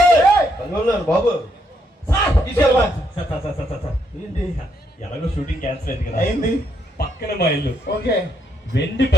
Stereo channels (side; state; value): both; normal; correlation 0.75